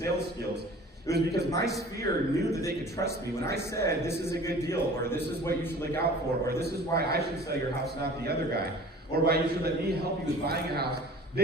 skills. It was because my sphere knew that they could trust me. When I said, this is a good deal, or this is what you should look out for, or this is why I should sell your house, not the other guy, or why you should let me help you with buying a house,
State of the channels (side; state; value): both; normal; correlation 0.45